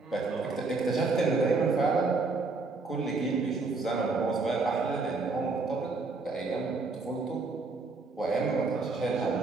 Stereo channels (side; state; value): left; quieter; 3.9 dB